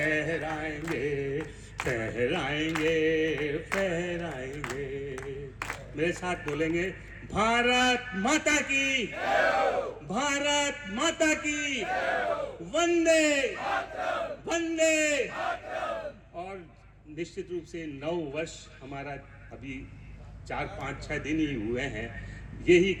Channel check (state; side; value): identical; both; correlation 1.00